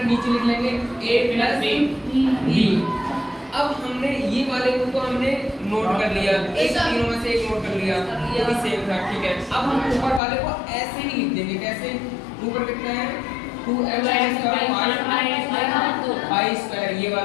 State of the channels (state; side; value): drops out; right; at 10.2 s